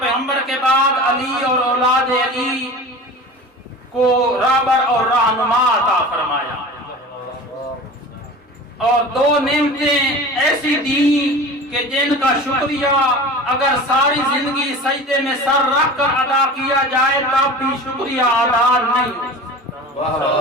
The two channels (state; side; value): normal; both; correlation 0.36